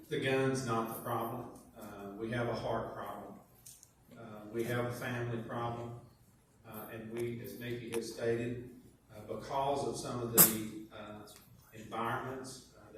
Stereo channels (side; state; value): both; identical; correlation 1.00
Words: The gun's not the problem. We have a heart problem. We have a family problem. And we, as Mickey has stated, because of some of the environments